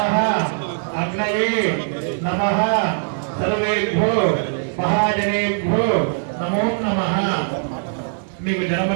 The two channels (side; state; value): left; silent; 59 dB below the other